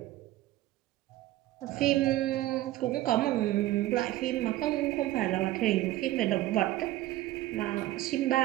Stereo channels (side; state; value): left; quieter; 15.7 dB